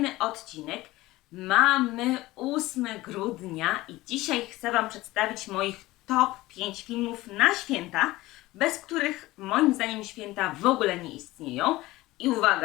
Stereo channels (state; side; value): quieter; right; 18.5 dB